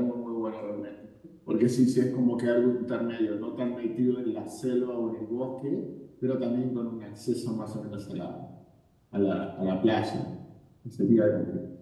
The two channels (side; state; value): both; identical; correlation 1.00